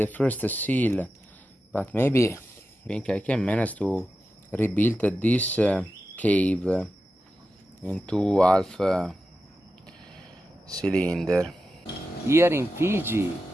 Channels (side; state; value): both; normal; correlation 0.91